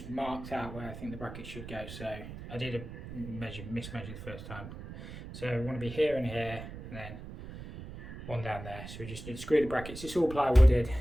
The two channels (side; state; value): right; noise; rumble, 11 dB below the sound